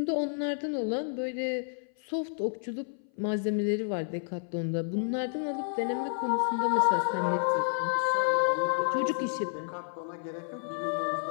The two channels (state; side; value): silent; right; 58 dB below the other